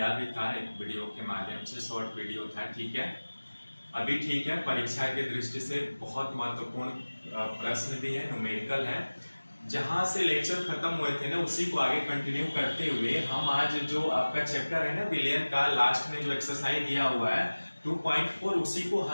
भी था एक वीडियो के माध्यम से, शॉर्ट वीडियो था। ठीक है, अभी ठीक है। परीक्षा की दृष्टि से बहुत महत्वपूर्ण प्रश्न भी है, न्यूमेरिकल है। जहां से लेक्चर खत्म हुए थे ना, उसी को आगे कंटिन्यू करते हुए हम आज जो आपका चैप्टर है ना विलियन का, लास्ट में जो एक्सरसाइज दिया हुआ है 2.4, उसी को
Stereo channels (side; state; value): both; inverted; correlation -1.00